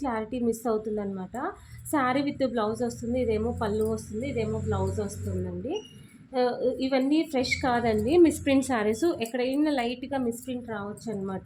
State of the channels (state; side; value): identical; both; correlation 1.00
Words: క్లారిటీ మిస్ అవుతుందన్నమాట. శారీ విత్ బ్లౌజ్ వస్తుంది, ఇదేమో పళ్ళు వస్తుంది, ఇదేమో బ్లౌజ్ వస్తుందండి. ఇవన్నీ ఫ్రెష్ కాదండి, మిస్ప్రింట్ శారీస్. ఎక్కడైనా లైట్గా మిస్ప్రింట్ రావచ్చు